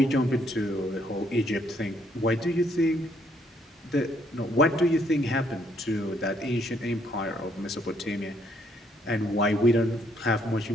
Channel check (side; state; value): both; normal; correlation 0.69